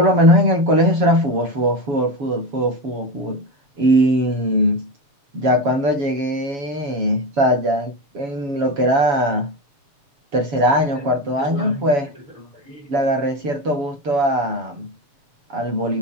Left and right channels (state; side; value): late; left; 7.1 ms